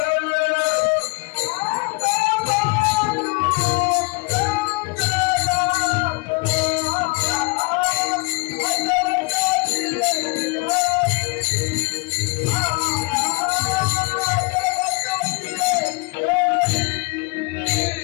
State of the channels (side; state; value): right; quieter; 28.0 dB